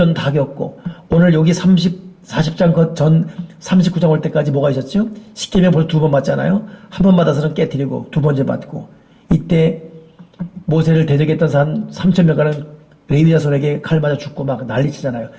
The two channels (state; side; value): identical; both; correlation 1.00